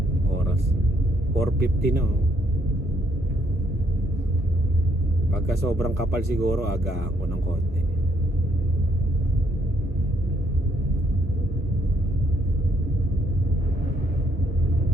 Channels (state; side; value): normal; both; correlation 0.69